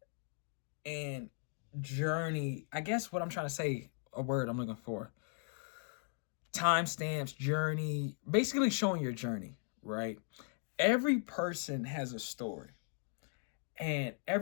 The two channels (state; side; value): silent; right; 52 dB below the other